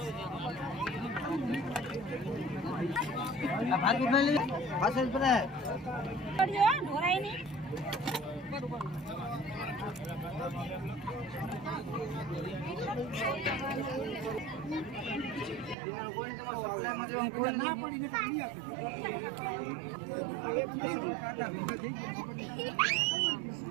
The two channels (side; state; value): left; drops out; at 15.8 s